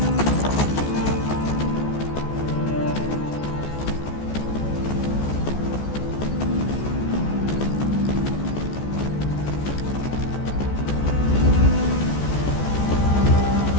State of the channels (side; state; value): right; late; 14 ms